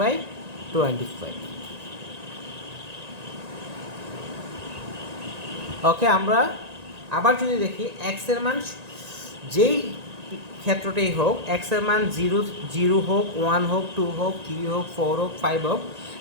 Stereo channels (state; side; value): late; left; 1.9 ms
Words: ওকে, আমরা আবার যদি দেখি এক্সের মান যেই ক্ষেত্রটাই হোক, এক্সের মান 0 হোক, 1 হোক, 2 হোক, 3 হোক, 4 হোক, 5 হোক,